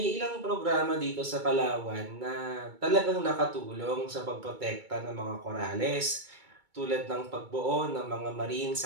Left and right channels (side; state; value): left; late; 2.2 ms